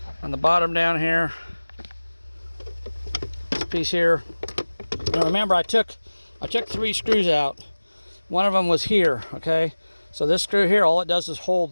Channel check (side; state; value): both; inverted; correlation -1.00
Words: on the bottom down here. This piece here. Now remember, I took 3 screws out. One of them was here. Okay, so this screw here, all it does is hold